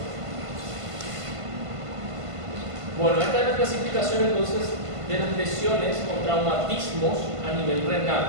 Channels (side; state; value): left; late; 1.5 ms